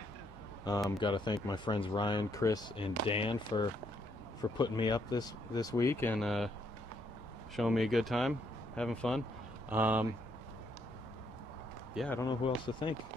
Got to thank my friends Ryan, Chris, and Dan for putting me up this week and showing me a good time, having fun. Yeah, I don't know who else to thank.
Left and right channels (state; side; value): normal; both; correlation 0.73